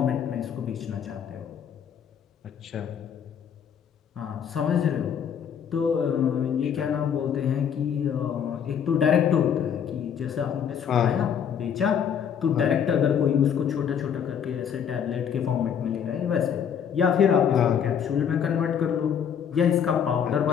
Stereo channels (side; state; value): right; quieter; 8.1 dB